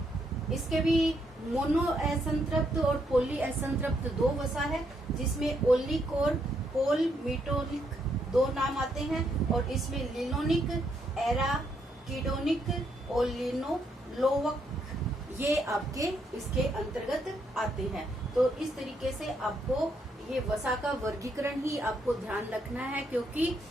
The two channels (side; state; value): both; normal; correlation 0.75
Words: इसके भी मोनो असंतृप्त और पॉली असंतृप्त दो वसा है, जिसमें ओलिक और पोलमिटोलिक दो नाम आते हैं, और इसमें लिनोनिक, एराकिडोनिक और लिनोलोवक, ये आपके इसके अंतर्गत आते हैं। तो इस तरीके से आपको ये वसा का वर्गीकरण ही आपको ध्यान रखना है, क्योंकि